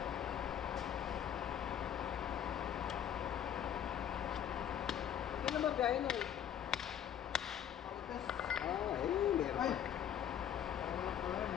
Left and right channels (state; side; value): quieter; right; 9.7 dB